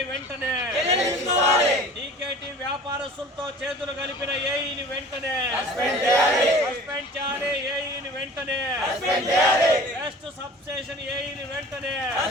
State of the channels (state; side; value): normal; both; correlation 0.44